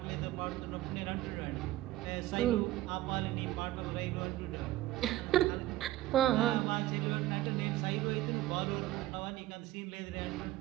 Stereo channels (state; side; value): quieter; left; 15.4 dB